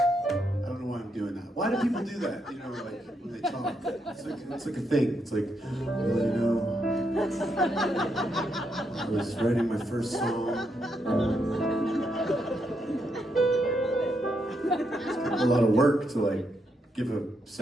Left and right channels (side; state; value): both; normal; correlation 0.79